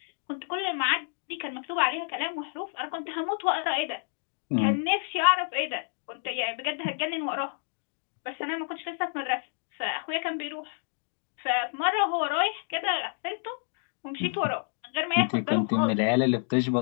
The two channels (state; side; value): silent; right; digital silence